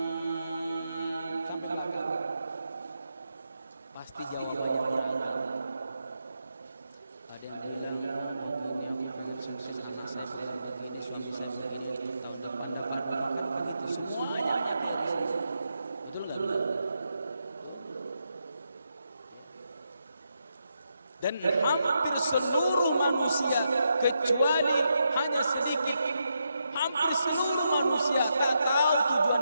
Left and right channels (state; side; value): inverted; both; correlation -0.83